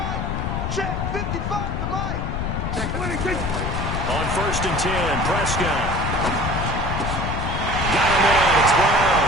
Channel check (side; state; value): left; noise; rumble, 2 dB below the sound